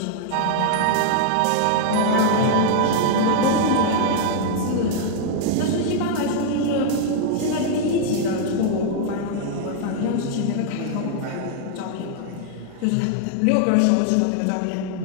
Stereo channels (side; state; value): both; different; correlation 0.00